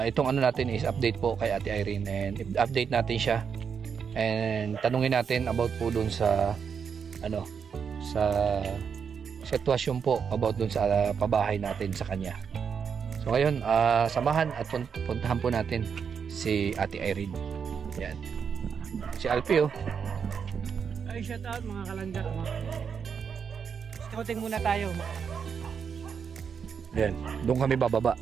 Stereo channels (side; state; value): left; quieter; 6.7 dB